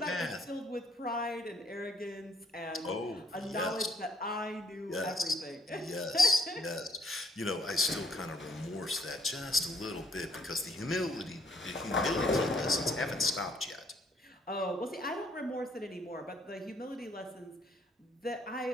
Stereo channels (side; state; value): both; normal; correlation 0.66